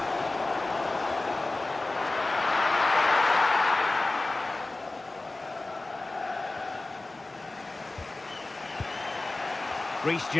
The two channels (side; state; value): right; quieter; 3.1 dB